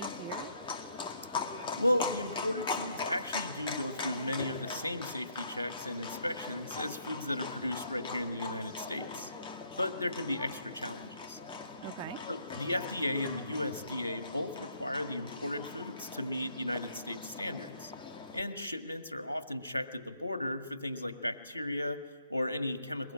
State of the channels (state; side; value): inverted; both; correlation -0.69